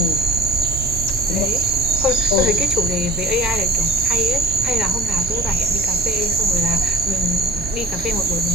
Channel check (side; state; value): both; normal; correlation 0.40